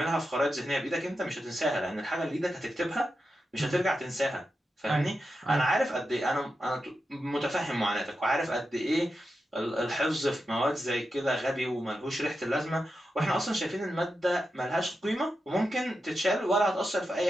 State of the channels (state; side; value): normal; both; correlation 0.89